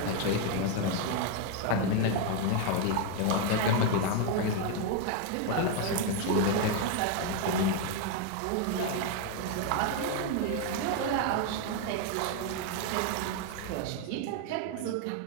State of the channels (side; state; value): both; different; correlation 0.01